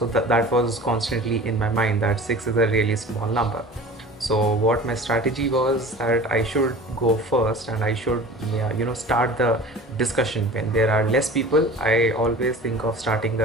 that was constantly in my mind that six is a really small number. So what my strategy was that I should go first and I should, yeah, start the discussion. When there are less people, I always think of starting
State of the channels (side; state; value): both; normal; correlation 0.39